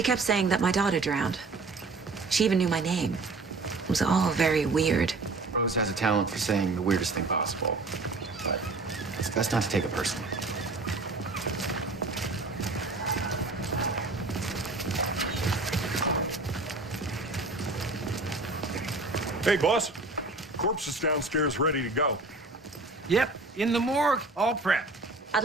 kept saying that my daughter drowned. She even knew my name. It was all very weird. Rose has a talent for saying the weirdest thing possible. But it's best not to take it personally. Hey, boss. Corpse is downstairs ready to go. Yep, in the morgue, all prepped. I'd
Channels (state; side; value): quieter; left; 3.4 dB